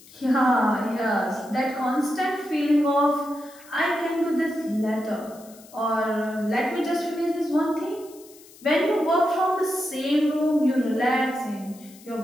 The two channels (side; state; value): left; noise; hiss, 23 dB below the sound